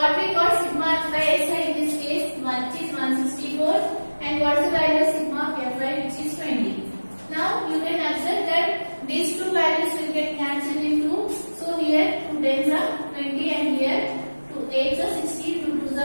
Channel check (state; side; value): inverted; both; correlation -1.00